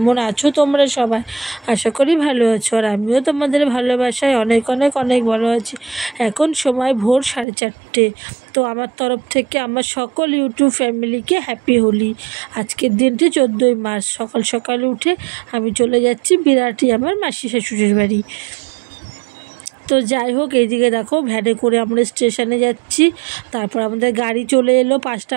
আছো তোমরা সবাই? আশা করি ভালো আছো, আর আমিও তোমাদের ভালোবাসায় অনেক অনেক অনেক ভালো আছি। এখন সময় ভোর 4:30। তো আমার তরফ থেকে আমার সকল ইউটিউব ফ্যামিলিকে হ্যাপি হোলি। আজকের দিনটি 14ই মার্চ। সকাল সকাল উঠে আমি চলে যাচ্ছি বিরাটি আমার মাসি শাশুড়ির বাড়ি। তো যাই হোক, এইদিকে দেখো ভ্যানে করে আমরা স্টেশনে যাচ্ছি। তারপর আমাদের গাড়ি চলে এলো, 5টা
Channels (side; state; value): left; drops out; at 7.5 s